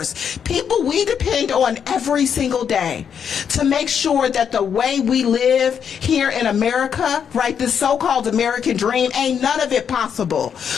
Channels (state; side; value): quieter; right; 7.7 dB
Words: people we depend on every single day to make sure that the way we live here in America, right, this so-called American dream, ain't none of it possible